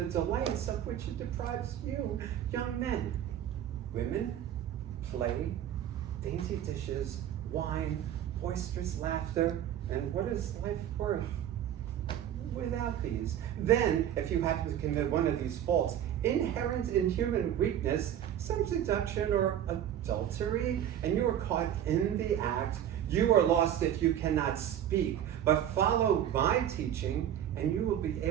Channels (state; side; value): quieter; left; 10.6 dB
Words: delights of which it deprives you, young men. Women, play, dainty dishes, wine, boisterous laughter, and what is life worth without these? Then, if you happen to commit one of these faults, inherent in human weakness, some seduction or adultery, and you are caught in the act, you are lost if you cannot speak. But follow my teaching, and you will be